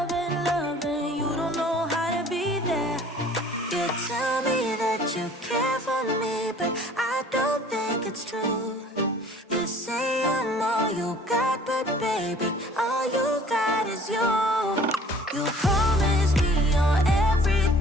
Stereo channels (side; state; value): both; normal; correlation 0.51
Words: loving. You don't know how to be there. You tell me that you care for me, but I don't think it's true. You say I'm all you got, but baby, all you got is you. You promise me you're